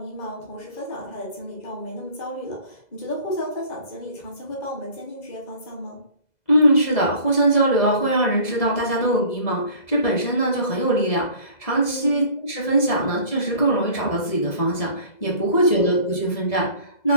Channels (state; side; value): late; right; 2.0 ms